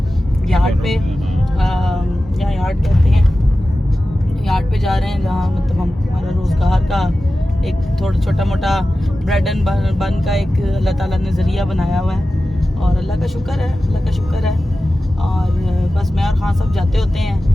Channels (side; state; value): both; normal; correlation 0.94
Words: यार्ड पे। यहाँ यार्ड कहते हैं, यार्ड पे जा रहे हैं जहाँ मतलब हम हमारा रोज़गार का एक थोड़ा छोटा मोटा ब्रेड एंड बन का एक अल्लाह ताला ने ज़रिया बनाया हुआ है और अल्लाह का शुक्र है, अल्लाह का शुक्र है। और बस मैं और खान साहब जाते होते